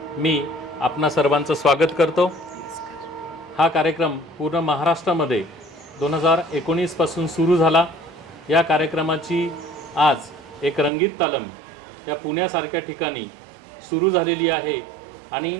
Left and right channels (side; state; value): left; drops out; at 10.9 s